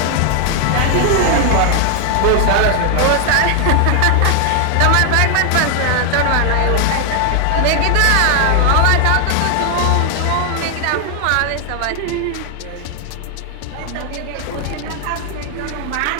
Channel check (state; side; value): different; both; correlation 0.00